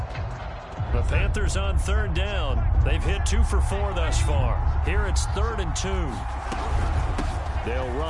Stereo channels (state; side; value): identical; both; correlation 1.00